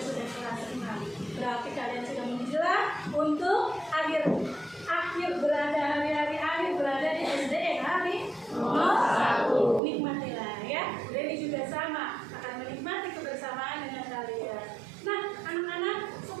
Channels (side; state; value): left; drops out; at 9.8 s